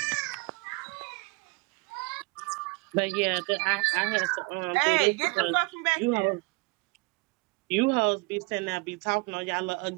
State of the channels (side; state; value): left; quieter; 27.5 dB